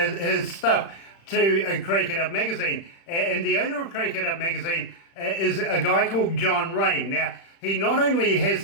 stuff to Crank It Up magazine. And the owner of Crank It Up magazine is a guy called John Rain. Now, he not only has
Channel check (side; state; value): right; late; 36 ms